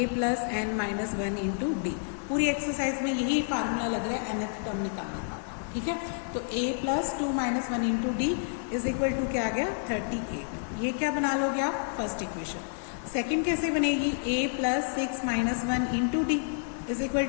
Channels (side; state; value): right; silent; digital silence